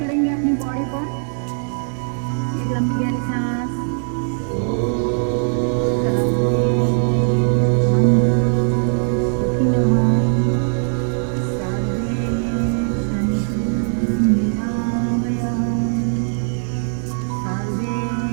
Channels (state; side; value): silent; left; 58 dB below the other